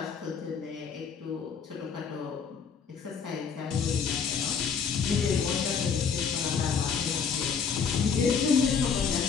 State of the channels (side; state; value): right; quieter; 6.3 dB